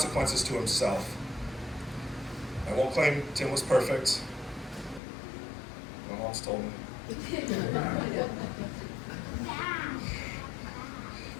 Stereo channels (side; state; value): right; drops out; at 5.0 s